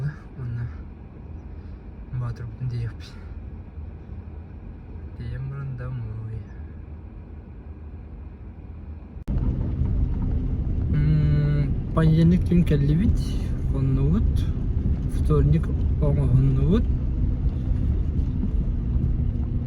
Onunla batır bütün diye yapayım. Темрон домой. Понедельник тун келлибит, оннуут. Вторник оңооннуут.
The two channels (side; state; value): both; identical; correlation 1.00